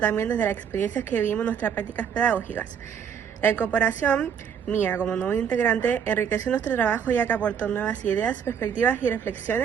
desde las experiencias que vivimos en nuestras prácticas pedagógicas. La incorporación mía como nuevo integrante enriqueció nuestro trabajo ya que aportó nuevas ideas, perspectivas y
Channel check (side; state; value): left; quieter; 7.7 dB